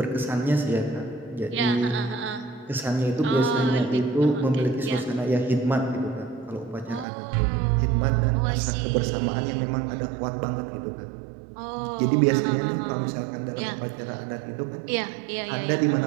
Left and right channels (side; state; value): left; drops out; at 7.1 s